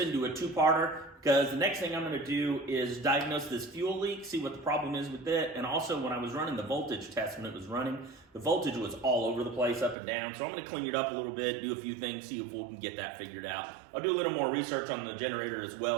a two-parter, because the next thing I'm going to do is diagnose this fuel leak, see what the problem is with it, and also when I was running the voltage test when it was running, the voltage was all over the place, up and down, so I'm going to clean it up a little bit, do a few things, see if we can get that figured out. I'll do a little more research on the generator as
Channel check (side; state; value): left; drops out; at 10.0 s